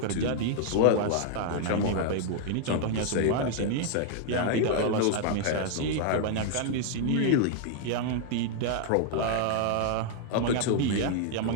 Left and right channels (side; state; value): both; different; correlation 0.00